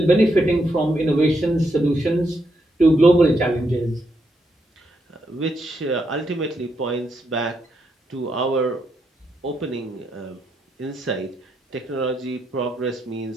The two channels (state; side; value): normal; both; correlation 0.80